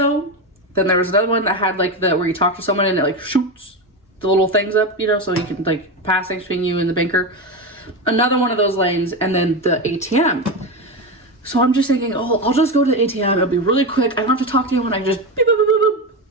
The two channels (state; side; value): normal; both; correlation 0.17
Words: then there was another one that had like where you talk to someone and it like shoots the little things up, you know, so you can like pass things between you and the banker. Another one of those lanes, and then the ATM. So I'm just thinking, oh, I'll just go to the ATM. It'll be really quick. I don't have to talk to anyone. I can just beep, boop, boop, boop, boop,